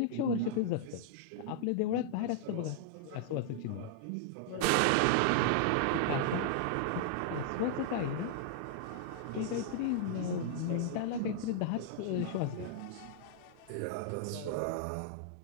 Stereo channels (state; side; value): different; both; correlation -0.01